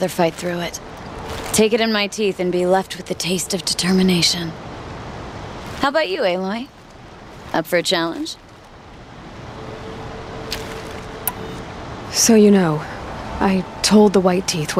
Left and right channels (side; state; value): both; identical; correlation 1.00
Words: fight through it. Take it in my teeth and be left with the taste of determination. How about you, Aloy? Up for a challenge? So you know, I told the White Teeth